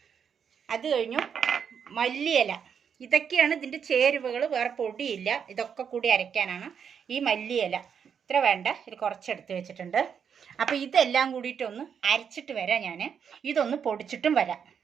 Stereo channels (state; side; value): quieter; left; 7.4 dB